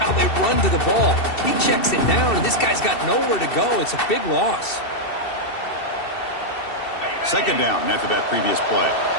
they run to the ball. He checks it down, and this guy's got nowhere to go. It's a big loss. Second down after that previous play.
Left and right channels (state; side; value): late; right; 2.7 ms